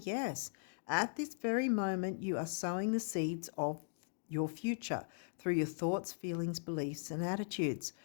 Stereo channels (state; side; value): silent; right; digital silence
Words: yes. At this very moment, you are sowing the seeds of your future through your thoughts, feelings, beliefs, and attitudes.